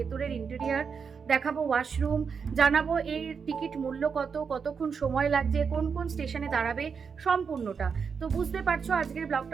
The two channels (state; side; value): quieter; left; 6.0 dB